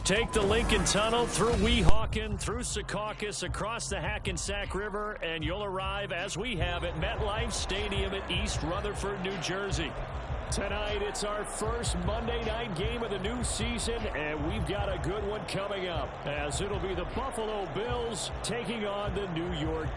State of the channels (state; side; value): identical; both; correlation 1.00